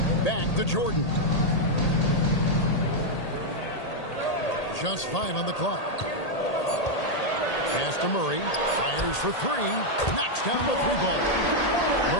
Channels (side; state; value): right; late; 1.8 ms